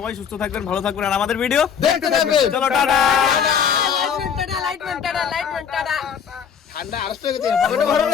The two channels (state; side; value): quieter; right; 7.5 dB